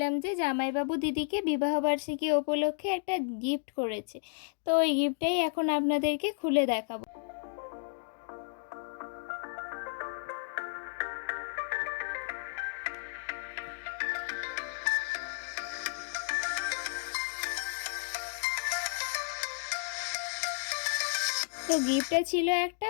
যে জামাইবাবু দিদিকে বিবাহবার্ষিকী উপলক্ষে একটা গিফট করেছে। তো ওই গিফটটাই এখন আপনাদেরকে খুলে দেখাবো। তো গিফটটা ছিল একটা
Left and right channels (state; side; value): silent; right; digital silence